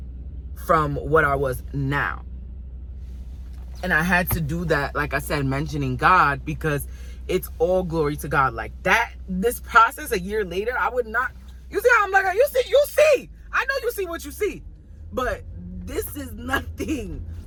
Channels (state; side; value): identical; both; correlation 1.00